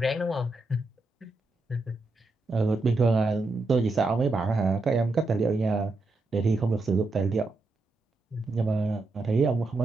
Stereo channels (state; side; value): quieter; left; 3.1 dB